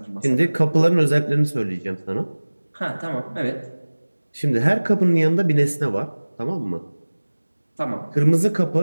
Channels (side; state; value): both; inverted; correlation -1.00